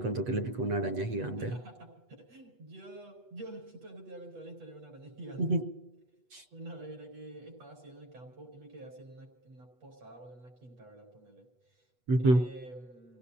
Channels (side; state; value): left; late; 8.2 ms